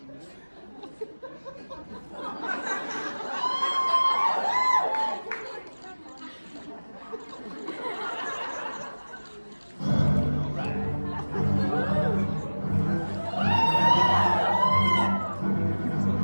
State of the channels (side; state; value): both; inverted; correlation -1.00